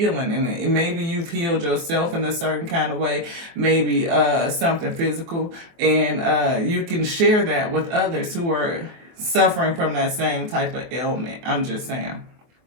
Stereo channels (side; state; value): left; late; 24 ms